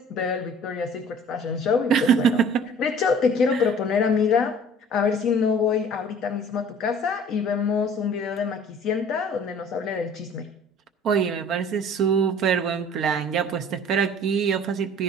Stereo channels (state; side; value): normal; both; correlation 0.49